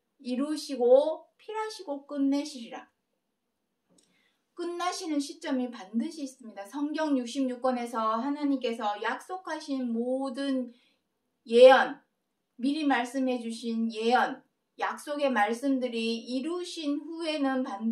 이루시고 필하시고 끝내시리라. 끝나시는 시점이 반드시 있습니다. 성경 66권에서 하나님께서 약속하신 모든 예언, 미리 말씀해 주신 예언, 약속의 말씀들이 이루신 후에는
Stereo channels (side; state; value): both; identical; correlation 1.00